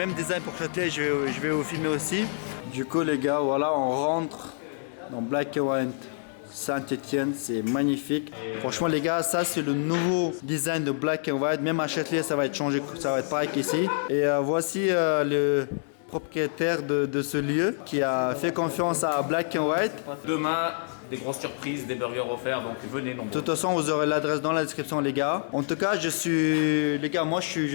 design pour Châtelet, je vais vous filmer aussi. Du coup les gars, voilà on rentre dans Black & White. Saint-Étienne, c'est magnifique. Franchement les gars, ça c'est le nouveau design de Black & White. Même à Châtelet, ça va être changé, ça va être pareil qu'ici. Et voici le propriétaire de ce lieu qui a fait confiance à Black & White. Demain, des grosses surprises, des burgers offerts, donc venez nombreux. De toute façon, vous aurez l'adresse dans la description les gars. En tout cas, je suis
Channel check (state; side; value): silent; right; digital silence